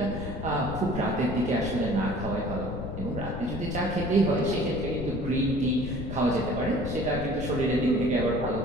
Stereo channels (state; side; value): noise; left; rumble, 6 dB below the sound